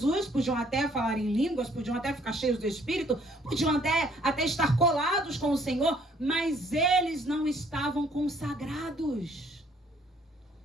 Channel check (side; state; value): both; normal; correlation 0.62